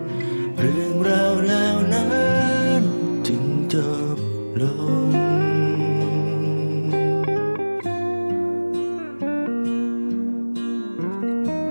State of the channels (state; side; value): inverted; both; correlation -1.00